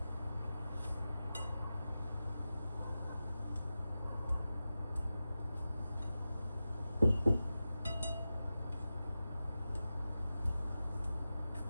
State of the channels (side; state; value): both; inverted; correlation -0.93